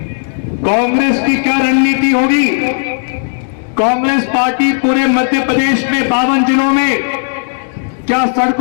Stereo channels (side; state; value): right; silent; 60 dB below the other